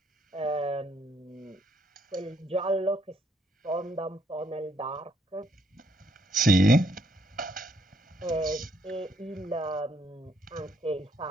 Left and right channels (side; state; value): both; normal; correlation 0.70